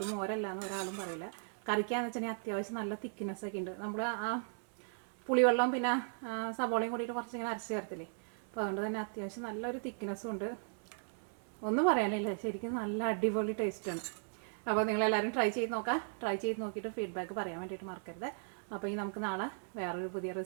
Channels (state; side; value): silent; left; digital silence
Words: മോരല്ലാന്ന് ഒരാളും പറയില്ല. കറിക്കാന്ന് വെച്ചിട്ടുണ്ടെങ്കിൽ അത്യാവശ്യം നല്ല തിക്നെസ്സൊക്കെ ഉണ്ട്. നമ്മൾ ആ പുളിവെള്ളം പിന്നെ സബോളയും കൂടിയിട്ട് കുറച്ചിങ്ങനെ അരച്ച് ചേർത്തില്ലേ. അപ്പോൾ അതുകൊണ്ട് തന്നെ അത്യാവശ്യം നല്ലൊരു തിക്നെസ്സും ഉണ്ട്. ഒന്നും പറയാനില്ല, ശരിക്കും നല്ല അടിപൊളി ടേസ്റ്റാണ്. അപ്പോൾ നിങ്ങളെല്ലാവരും ട്രൈ ചെയ്ത് നോക്കാം. ട്രൈ ചെയ്ത് നോക്കിയിട്ട് ഫീഡ്ബാക്ക് പറയാൻ വേണ്ടിയിട്ട് മറക്കരുത്. അപ്പോൾ ഈ നമുക്ക് നാളെ വേറൊരു പുതിയ